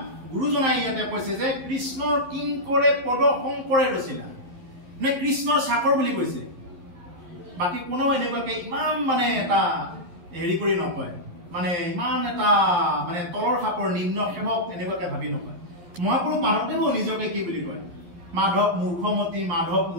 গুৰুজনাই ইয়াতে কৈছে যে কৃষ্ণৰ কিংকৰে পদ শংকৰে ৰচিলা মানে কৃষ্ণৰ চাকৰ বুলি কৈছে বাকী কোনো এনেকুৱাকে ইমান মানে এটা হেৰি কৰি নকয় মানে ইমান এটা মানে তলৰ খাপৰ নিম্ন সেৱক এনেকুৱাকে ভাবি নকয় মহাপুৰুষ মাধৱদেৱো নিজকে কি বুলি কয় মাধৱ মূৰ্খমতী মাধৱ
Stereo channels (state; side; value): late; left; 11 ms